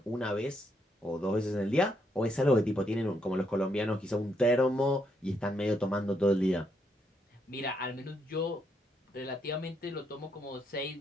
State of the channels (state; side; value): normal; both; correlation 0.76